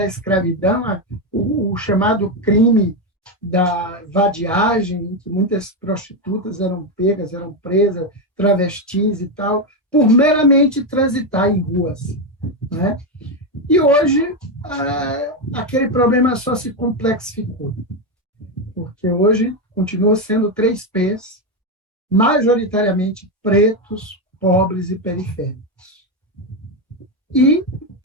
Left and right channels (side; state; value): both; normal; correlation 0.08